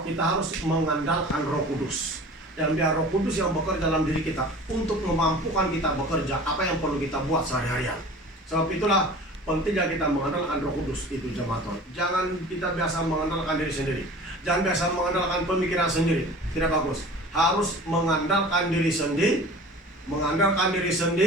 kita harus mengandalkan Roh Kudus. Dan biar Roh Kudus yang bekerja dalam diri kita untuk memampukan kita bekerja apa yang perlu kita buat sehari-harian. Sebab itulah pentingnya kita mengandalkan Roh Kudus itu, jemaat Tuhan. Jangan kita biasa mengandalkan diri sendiri. Jangan biasa mengandalkan pemikiran sendiri. Tidak bagus. Harus mengandalkan diri sendiri, mengandalkan diri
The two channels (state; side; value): normal; both; correlation 0.41